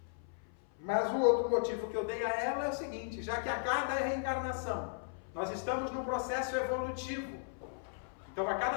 Mas o outro motivo que eu dei a ela é o seguinte: já que a cada reencarnação nós estamos num processo evolutivo, então a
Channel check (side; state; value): right; silent; 54 dB below the other